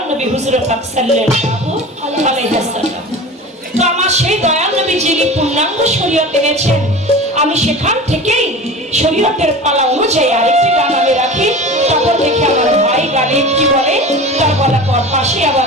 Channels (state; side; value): normal; both; correlation 0.34